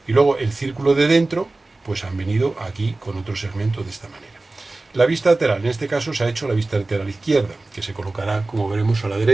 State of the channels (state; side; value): quieter; left; 3.1 dB